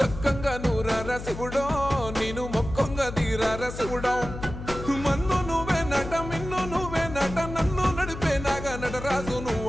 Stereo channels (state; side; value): noise; left; hum, 10 dB below the sound